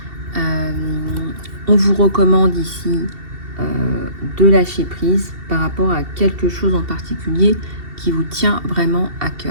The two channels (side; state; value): left; late; 2.7 ms